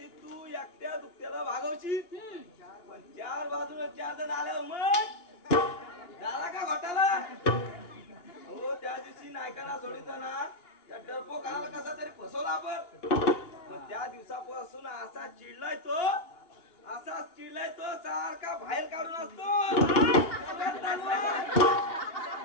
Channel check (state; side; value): late; right; 2.9 ms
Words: तू एकट्या दुखत्याला भागवशील पण चार बाजूला 4 जण आल्यावर मग झाला का घोटाला? हो त्या दिवशी नायकांना सोडिताना त्या डरपोकाला कसा तरी फसवला आपण. पण त्या दिवसापासून असाच चिडलाय तो सारखा बाहेर काढून असतो.